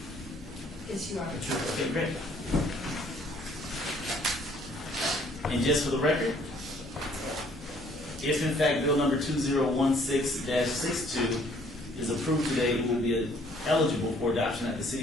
Yes, you are. Okay, great. And just for the record, if in fact bill number 2016-62 is approved today, it will be eligible for adoption at the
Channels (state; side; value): normal; both; correlation 0.61